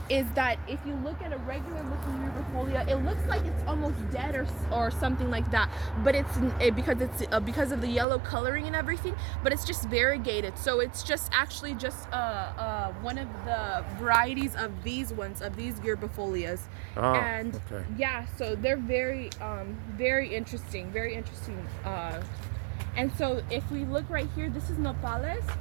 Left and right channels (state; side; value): drops out; left; at 8.1 s